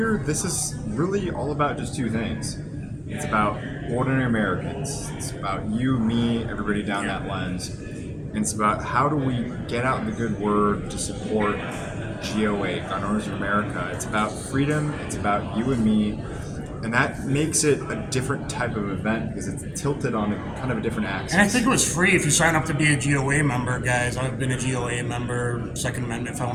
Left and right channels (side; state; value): both; identical; correlation 1.00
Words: this is really all about just two things. It's about ordinary Americans. It's about you, me, everybody down that lens. And it's about how do we get out the good word to support GOA, Gun Owners of America. It's about freedom, it's about you and me, and that makes it a different type of event because it's tilted on kind of a different axis. And I think it was free if you sign up to be a GOA member, guys. I've been a GOA member, Second Amendment